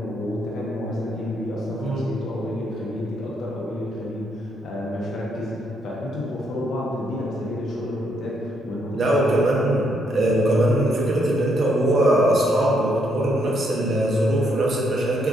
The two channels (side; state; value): both; normal; correlation 0.74